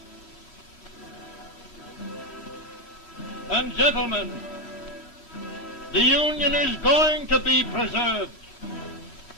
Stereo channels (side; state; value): right; late; 8.4 ms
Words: And gentlemen, the Union is going to be preserved.